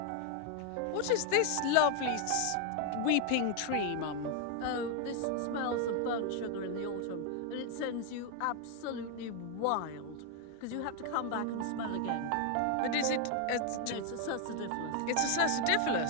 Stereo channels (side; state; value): both; different; correlation 0.00